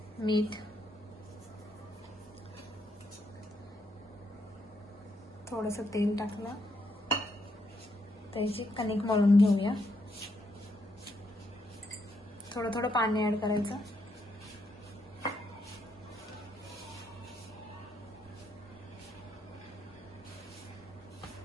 मीठ, थोडंसं तेल टाकलं. त्याची कणिक मळून घेऊया. थोडं थोडं पाणी ऍड करायचं.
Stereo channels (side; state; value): both; normal; correlation 0.77